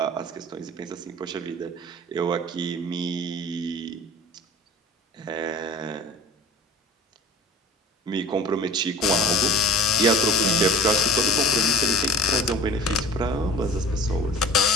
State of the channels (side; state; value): both; normal; correlation 0.42